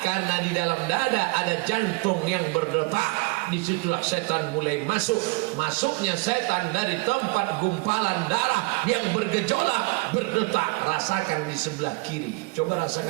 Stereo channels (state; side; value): quieter; left; 26.5 dB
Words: Karena di dalam dada ada jantung yang berdetak. Disitulah setan mulai masuk. Masuknya setan dari tempat gumpalan darah yang bergejolak, berdetak. Rasakan di sebelah kiri. Coba